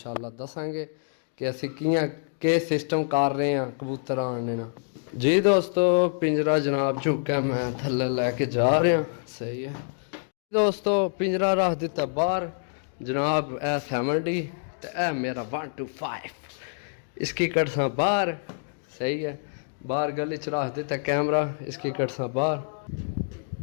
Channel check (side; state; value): right; silent; digital silence